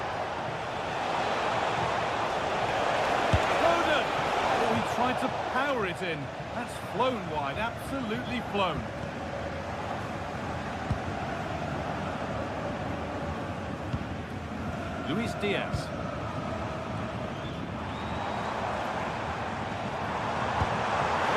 Foden! Oh, he tried to power it in. That's flown wide, absolutely flown. Luis Diaz.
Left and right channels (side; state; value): both; identical; correlation 1.00